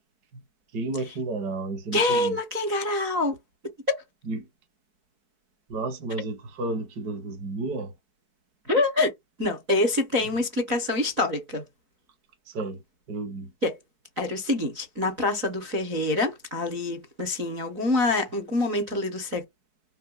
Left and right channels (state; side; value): late; left; 4.6 ms